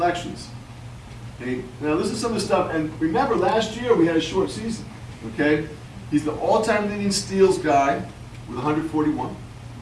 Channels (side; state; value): both; identical; correlation 1.00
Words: Okay, now this is some of the stuff, and remember last year we had a short season. Okay, he's the all-time leading steals guy with 141.